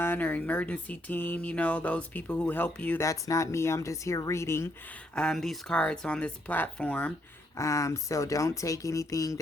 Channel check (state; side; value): normal; both; correlation 0.73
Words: or emergency team, those people who help you. That's not me. I'm just here reading these cards on this platform. So don't take anything